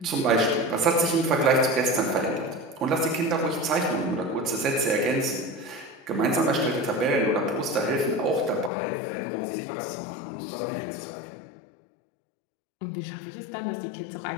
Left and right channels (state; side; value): drops out; right; at 8.7 s